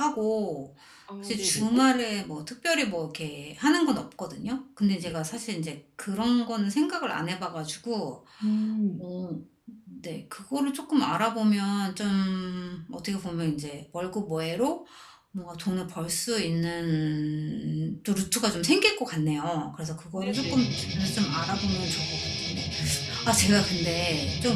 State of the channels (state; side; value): identical; both; correlation 1.00